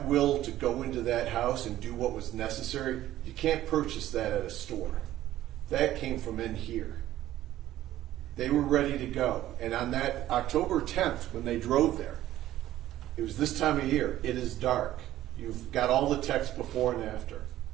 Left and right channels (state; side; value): quieter; left; 13.8 dB